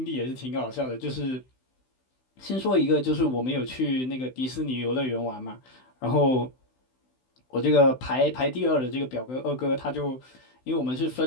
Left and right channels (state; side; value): late; right; 16 ms